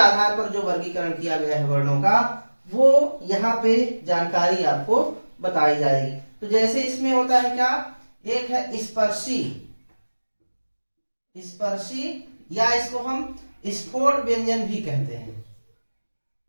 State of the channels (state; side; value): inverted; both; correlation -1.00